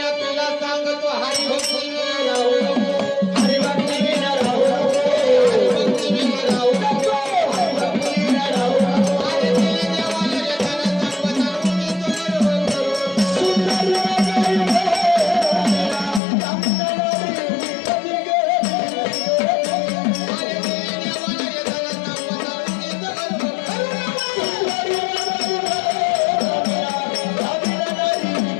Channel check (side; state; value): right; drops out; at 16.2 s